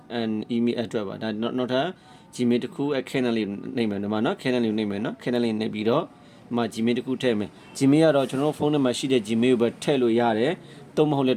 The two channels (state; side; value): identical; both; correlation 1.00